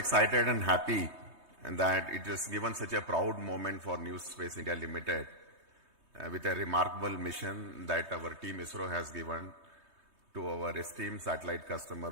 and happy that it has given such a proud moment for New Space India Limited with a remarkable mission that our Team ISRO has given to our esteemed satellite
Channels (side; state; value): left; late; 3.2 ms